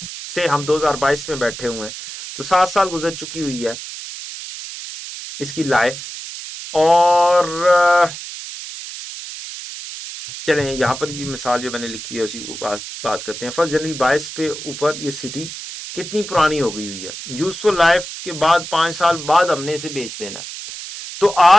से हम 2022 में बैठे हुए हैं तो 7 साल गुजर चुकी हुई है इसकी लाइफ. और चलें यहाँ पर भी मिसाल जो मैंने लिखी है उसी को बात करते हैं. 1 जनवरी 22 पे ऊपर ये सिटी कितनी पुरानी हो गई हुई है. यूजफुल लाइफ के बाद 5 साल बाद हमने इसे बेच देना. तो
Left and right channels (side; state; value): right; noise; hiss, 10 dB below the sound